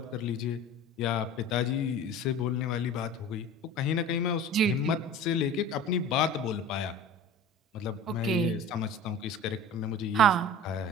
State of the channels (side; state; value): both; normal; correlation 0.38